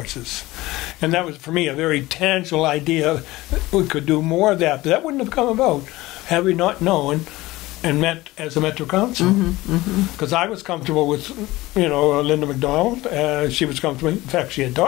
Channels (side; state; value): right; quieter; 18.9 dB